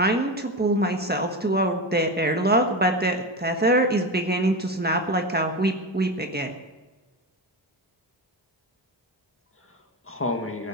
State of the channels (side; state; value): both; normal; correlation 0.20